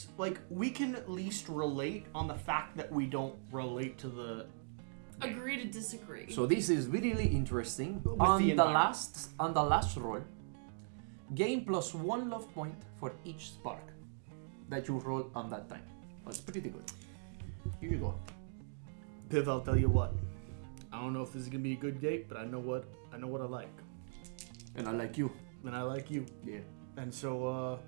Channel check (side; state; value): left; silent; digital silence